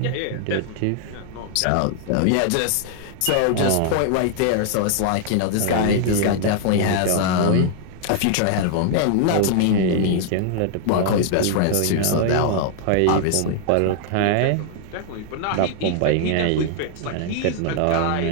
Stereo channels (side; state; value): both; different; correlation 0.00